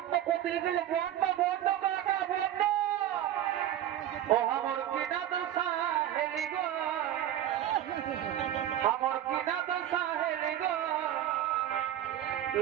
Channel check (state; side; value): quieter; left; 11.8 dB